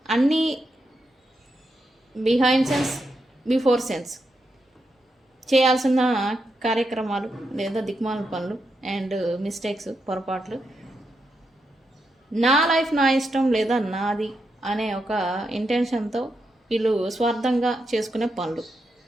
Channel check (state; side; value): normal; both; correlation 0.84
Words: అన్నీ బిహైండ్ సెన్స్ బిఫోర్ సెన్స్ చేయాల్సిన కార్యక్రమాలు లేదా దిక్మాల పనులు అండ్ మిస్టేక్స్, పొరపాట్లు, నా లైఫ్ నా ఇష్టం లేదా నాది అనే ఒక ఇంటెన్షన్తో వీళ్ళు స్వార్థంగా చేసుకునే పనులు.